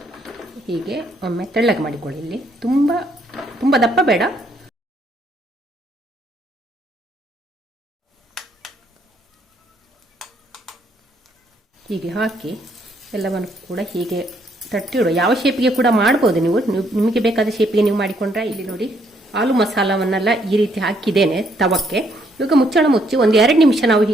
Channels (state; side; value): normal; both; correlation 0.70